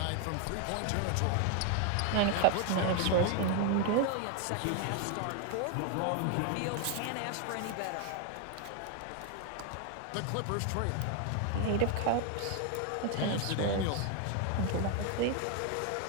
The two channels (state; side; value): different; both; correlation 0.01